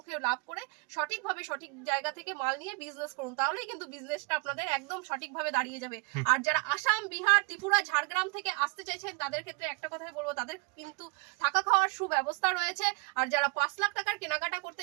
লাভ করে সঠিকভাবে সঠিক জায়গা থেকে মাল নিয়ে বিজনেস করুন তাহলেই কিন্তু বিজনেসটা আপনাদের একদম সঠিকভাবে দাঁড়িয়ে যাবে। আর যারা আসাম বিহার ত্রিপুরা ঝাড়গ্রাম থেকে আসতে চাইছেন তাদের ক্ষেত্রে একটা কথাই বলবো তাদের কিন্তু থাকা খাওয়ার সুব্যবস্থা রয়েছে। আর যারা 5 লাখ টাকার কেনাকাটা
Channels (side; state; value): left; quieter; 30.5 dB